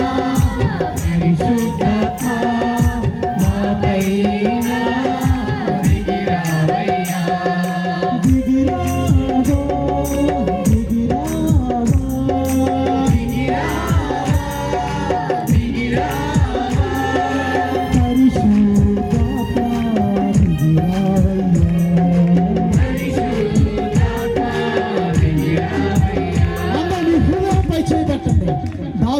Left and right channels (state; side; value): identical; both; correlation 1.00